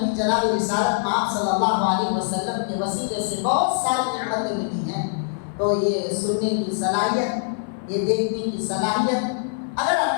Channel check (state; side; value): silent; right; 63 dB below the other